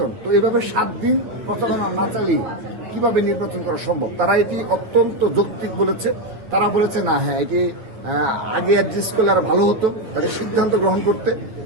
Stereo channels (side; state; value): left; late; 9.5 ms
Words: তো এইভাবে 7 দিন প্রচারণা না চালিয়ে কিভাবে নির্বাচন করা সম্ভব? তারা এটি অত্যন্ত যৌক্তিক বলেছে। তারা বলেছে না, হ্যাঁ এটি আগে অ্যাডজাস্ট করলে আরো ভালো হতো, তাদের সিদ্ধান্ত গ্রহণ করতে,